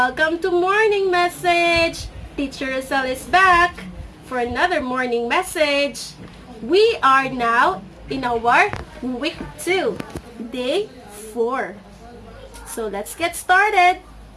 to Morning Message. Teacher Rosel is back for another morning message. We are now in our week 2, day 4. So let's get started.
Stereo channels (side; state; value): both; identical; correlation 1.00